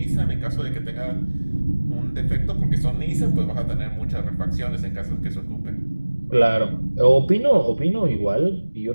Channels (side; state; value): both; inverted; correlation -1.00